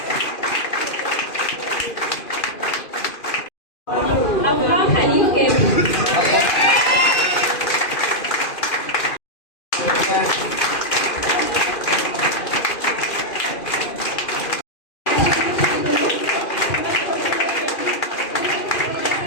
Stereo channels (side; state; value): right; late; 2.4 ms